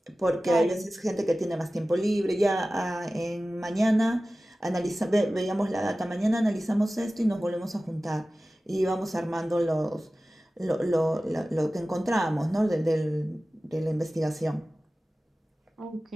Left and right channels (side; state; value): both; normal; correlation 0.96